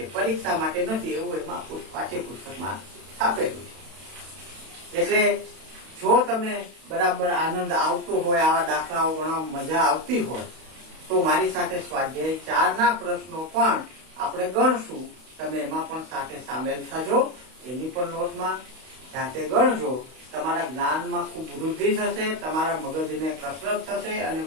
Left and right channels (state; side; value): late; left; 32 ms